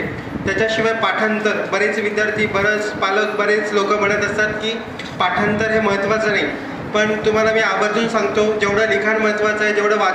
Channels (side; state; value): both; identical; correlation 1.00